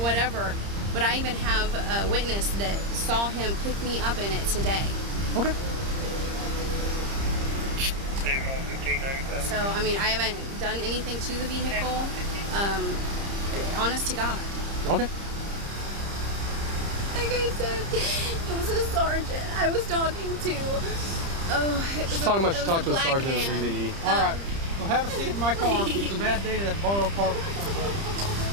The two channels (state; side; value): late; left; 30 ms